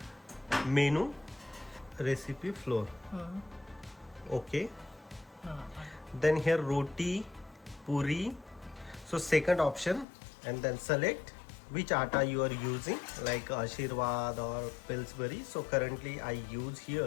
menu recipe flour. Okay, then here roti puri, so second option, and then select which atta you are using, like Ashirvad or Pillsbury. So currently I use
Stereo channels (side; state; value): right; drops out; at 10.1 s